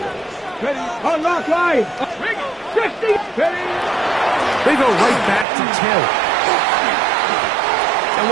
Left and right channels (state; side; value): drops out; left; at 5.5 s